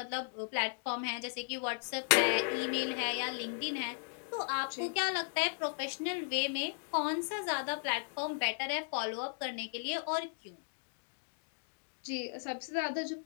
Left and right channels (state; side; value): silent; right; digital silence